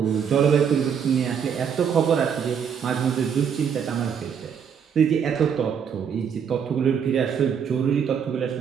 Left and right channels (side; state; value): left; quieter; 7.5 dB